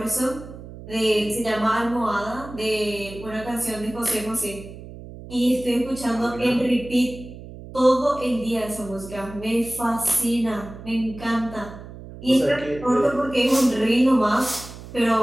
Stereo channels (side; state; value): right; noise; hum, 14 dB below the sound